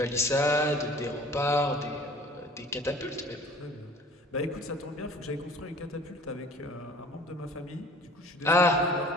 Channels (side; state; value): both; normal; correlation 0.48